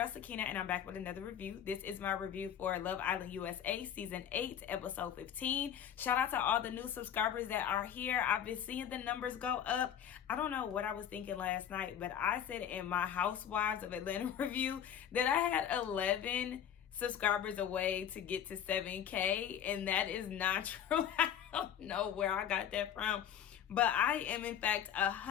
Sakina, and I'm back with another review. This is my review for Love Island USA Season 8, Episode 15. Shout out to all the new subscribers that are here. I've been seeing the numbers go up. I don't know what I was thinking last night, but I said in my Housewives of Atlanta review that I had 11 subscribers away to get to 7K, and that is not true. I don't know where I got that from, but I am, in fact,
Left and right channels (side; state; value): right; quieter; 9.4 dB